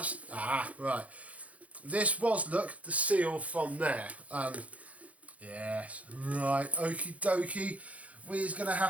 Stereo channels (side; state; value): left; late; 0.067 ms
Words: right. This was, look, the seal from there. Yes, right, okie dokie. We're going to